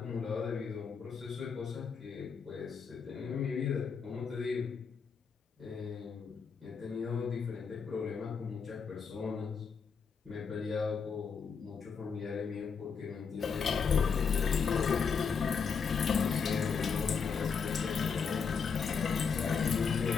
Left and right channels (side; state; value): right; quieter; 5.8 dB